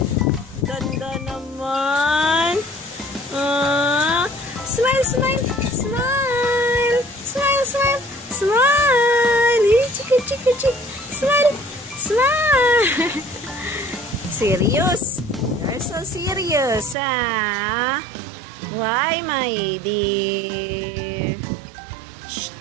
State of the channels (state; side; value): drops out; left; at 16.9 s